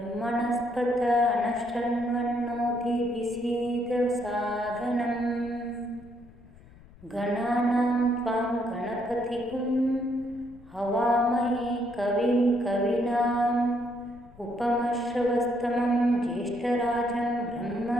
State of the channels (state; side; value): noise; left; rumble, 22 dB below the sound